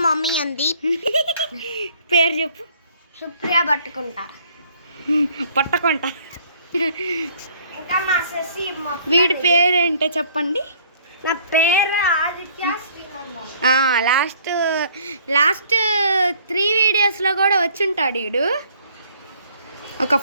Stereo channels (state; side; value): inverted; both; correlation -0.59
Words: mummy ఉంది. పేరు చెప్పు. సుప్రియ పట్టుకుంటా. ఇంకా మా శశి. వీడి పేరేంటో చెప్పండి. నా పేరు ఆదిత్య శ్రీనందన్. లాస్ట్ 3 వీడియోస్లో కూడా వచ్చుంటాడు వీడు. ఒక